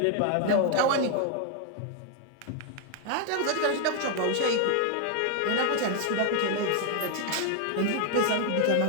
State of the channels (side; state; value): both; different; correlation 0.00